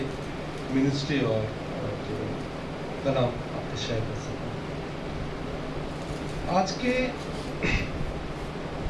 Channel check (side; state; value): both; identical; correlation 1.00